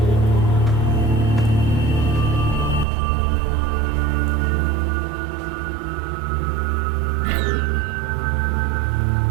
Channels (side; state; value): left; drops out; at 2.9 s